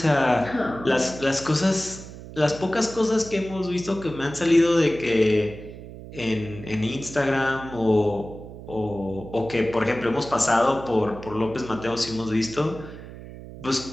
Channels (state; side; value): noise; right; hum, 14 dB below the sound